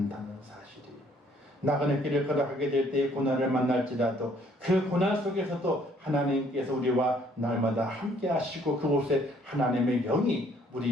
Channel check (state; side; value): normal; both; correlation 0.63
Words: 사실이에요. 나그네 길을 걸어가게 될 때에 고난을 만날지라도 그 고난 속에서도 하나님께서 우리와 날마다 함께 하시고 그곳에 하나님의 영이